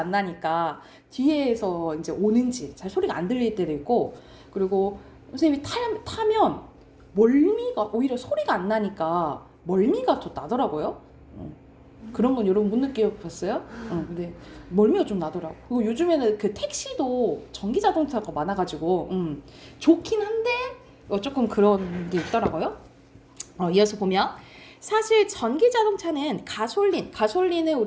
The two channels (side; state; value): both; identical; correlation 1.00